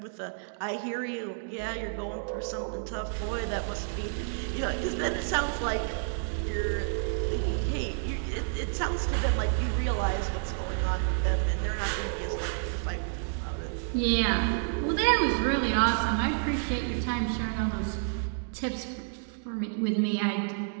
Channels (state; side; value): silent; left; digital silence